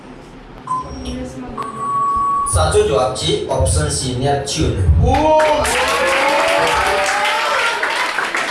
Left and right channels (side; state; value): both; identical; correlation 1.00